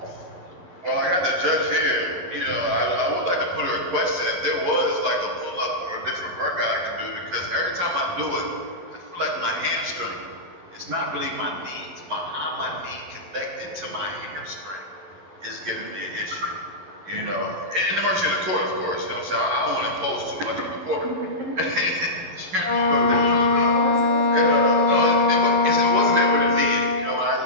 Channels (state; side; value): late; left; 11 ms